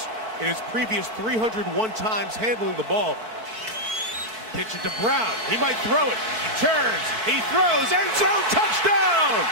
in his previous 301 times handling the ball. Pitch it to Brown. He might throw it. He turns. He throws. End zone touchdown!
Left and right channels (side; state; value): left; late; 4.5 ms